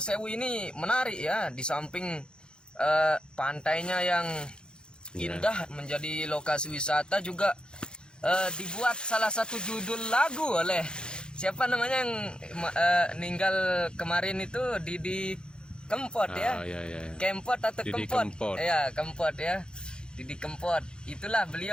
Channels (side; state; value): right; late; 0.049 ms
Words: ini menarik ya, di samping pantainya yang indah menjadi lokasi wisata juga dibuat salah satu judul lagu oleh siapa namanya yang meninggal kemarin itu, Didi Kempot Kempot atau Didi Kempot ya, Kempot ya, Didi Kempot. Itulah